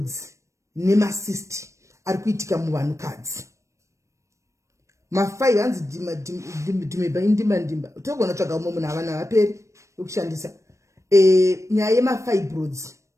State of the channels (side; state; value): left; late; 0.15 ms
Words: nemacyst ari kuitika muvanhukadzi mafai hanzi ndimba togona tsvaga umwe munhu havana vaperi vekushandisa nyaya yemafibroids